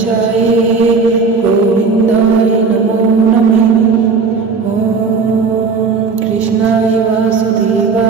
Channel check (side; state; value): left; quieter; 4.7 dB